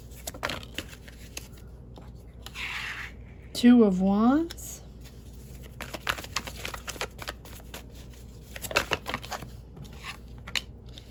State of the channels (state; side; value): identical; both; correlation 1.00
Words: Two of Wands.